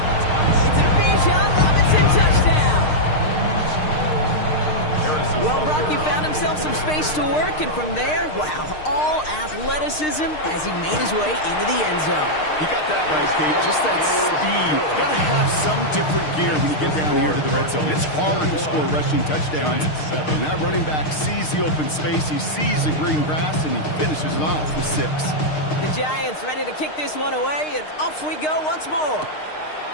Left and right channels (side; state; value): right; late; 6.5 ms